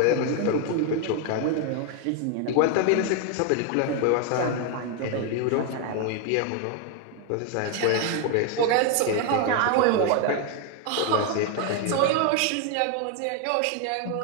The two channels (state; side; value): different; both; correlation 0.01